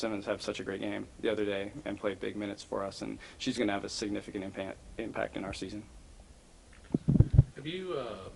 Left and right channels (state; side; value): identical; both; correlation 1.00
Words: have such a great game the other day and play big minutes for us, and she's going to have a significant impact in our season. Have you,